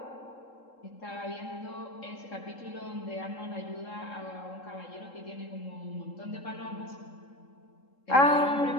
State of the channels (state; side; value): late; right; 3.7 ms